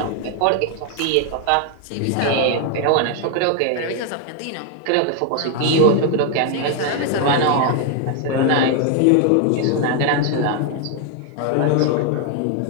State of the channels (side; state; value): both; different; correlation 0.00